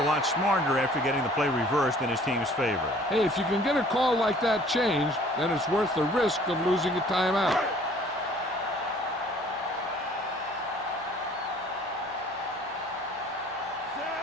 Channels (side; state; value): both; normal; correlation 0.53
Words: lot smarter after getting the play reversed in his team's favor. Hey, if you can get a call like that changed, then it's worth the risk of losing a timeout.